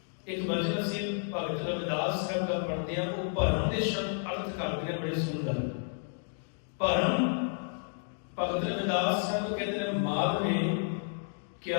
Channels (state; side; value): silent; right; digital silence